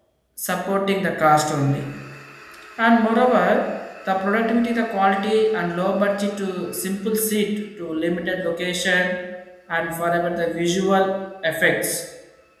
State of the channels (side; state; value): both; identical; correlation 1.00